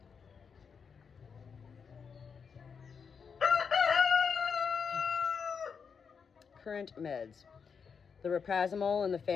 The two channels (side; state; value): right; quieter; 6.2 dB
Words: Current meds. The raprazimol and the